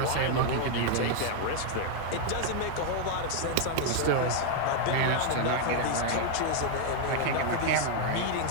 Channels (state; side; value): different; both; correlation 0.00